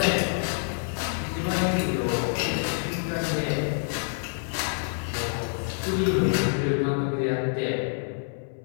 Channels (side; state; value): right; silent; 58 dB below the other